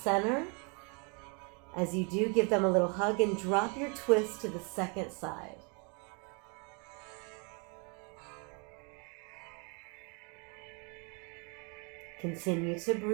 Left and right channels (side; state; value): left; quieter; 35.2 dB